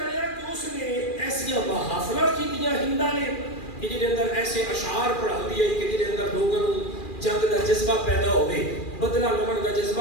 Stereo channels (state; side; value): late; right; 2.4 ms